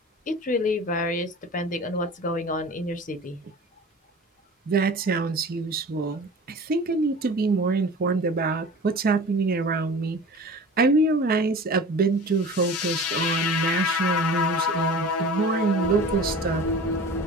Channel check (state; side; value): normal; both; correlation 0.39